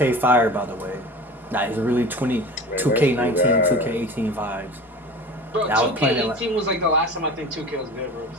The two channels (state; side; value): normal; both; correlation 0.36